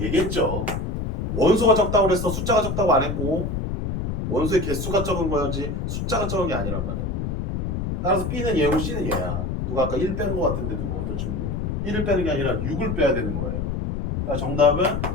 원소가 적다고 그랬어. 숫자가 적다고 안 했고 원소의 개수가 적은 거지 숫자가 적은 게 아니란 말이야. 따라서 B는 얘고 C는 얘야. 누가 아까 1 빼는 거 같은데 누구 어떤 친구 1을 빼는 게 아니라 6을 빼야 되는 거예요. 정답은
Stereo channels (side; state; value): left; noise; rumble, 2 dB below the sound